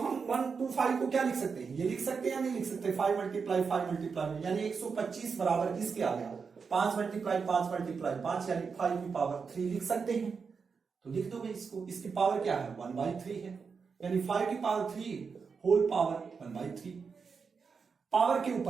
1 to 5 को क्या लिख सकते हैं, ये लिख सकते हैं या नहीं लिख सकते, 5 मल्टीप्लाई 5 मल्टीप्लाई, यानी 125 बराबर किसके आ गया, 5 मल्टीप्लाई 5 मल्टीप्लाई 5, यानी 5 की पावर 3 लिख सकते हैं। तो लिख दो भाई इसको, इसकी पावर क्या है 1/3 है, यानी 5 की पावर 3 होल पावर 1/3। पावर के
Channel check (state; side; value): quieter; left; 5.5 dB